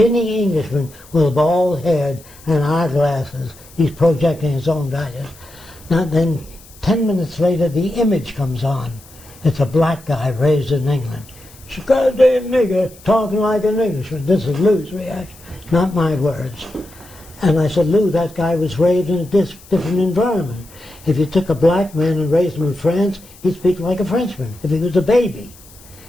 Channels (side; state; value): left; noise; hiss, 23 dB below the sound